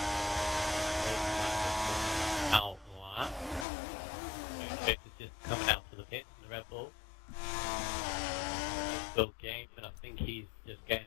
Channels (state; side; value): drops out; right; at 3.7 s